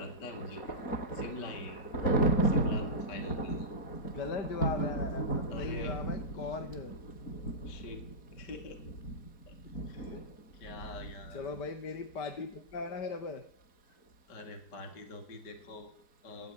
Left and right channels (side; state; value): right; late; 4.2 ms